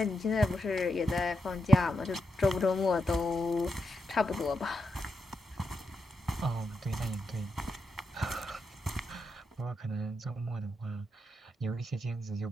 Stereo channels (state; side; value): normal; both; correlation 0.84